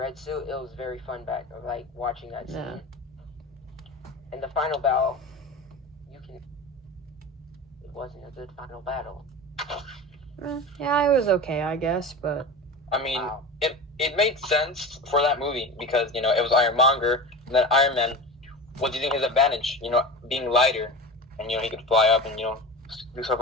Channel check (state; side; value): normal; both; correlation 0.30